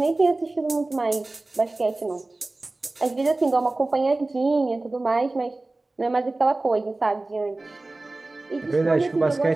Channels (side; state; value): left; quieter; 3.0 dB